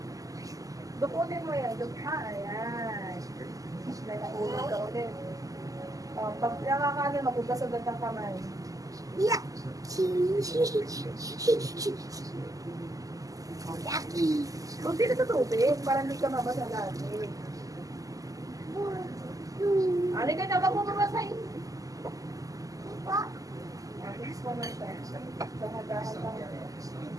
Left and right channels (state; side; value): late; left; 0.17 ms